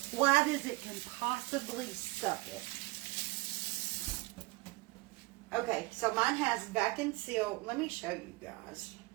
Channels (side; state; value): left; quieter; 22.3 dB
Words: as it can possibly suck it. Okay, so mine has vac and seal. Let me show you guys